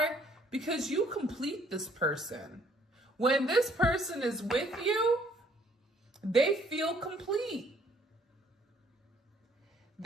Because you complete this person. When this person is with you, they feel complete.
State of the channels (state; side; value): normal; both; correlation 0.62